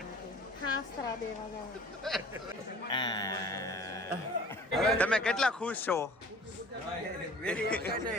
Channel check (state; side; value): normal; both; correlation 0.47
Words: હાસ્ત્રા દેવા જાવ. તમે કેટલા ખુશ છો?